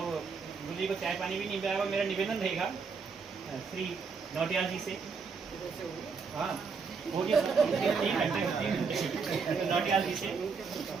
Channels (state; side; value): quieter; left; 5.3 dB